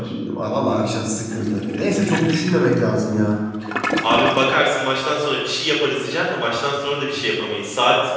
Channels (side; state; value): both; identical; correlation 1.00